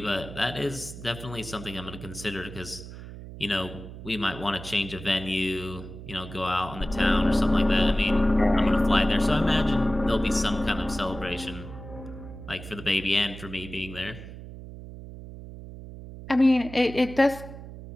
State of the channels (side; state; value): right; noise; hum, 13 dB below the sound